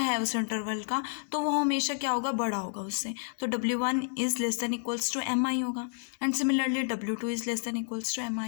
उस इंटरवल का तो वो हमेशा क्या होगा, बड़ा होगा उससे। तो W1 is less than equals to MI होगा and similarly W2 is less than equals to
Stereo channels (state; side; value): silent; right; digital silence